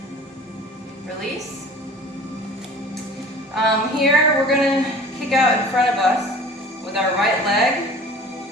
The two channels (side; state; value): both; normal; correlation 0.44